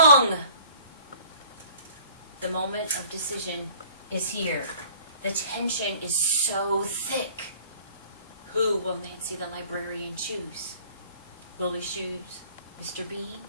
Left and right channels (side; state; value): both; inverted; correlation -0.51